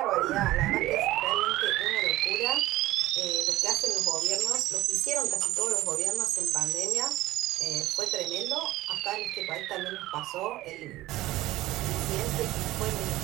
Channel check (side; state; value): left; quieter; 16.7 dB